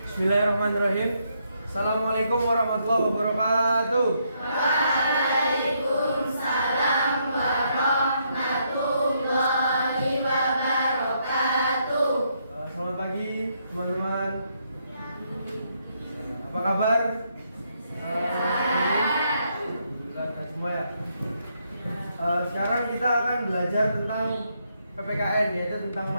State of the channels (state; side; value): inverted; both; correlation -0.75